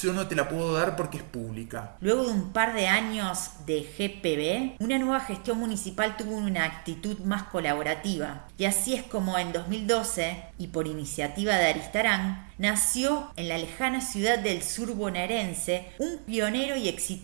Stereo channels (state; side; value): silent; left; 58 dB below the other